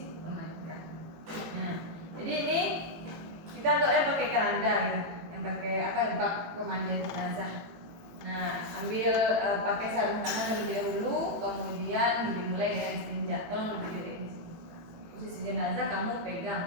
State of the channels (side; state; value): left; late; 18 ms